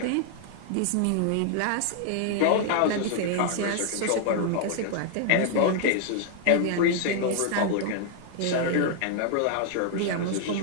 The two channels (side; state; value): both; different; correlation 0.00